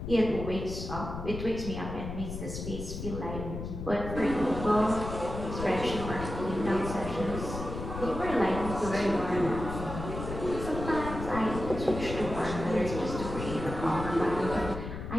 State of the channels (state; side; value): noise; left; rumble, 7 dB below the sound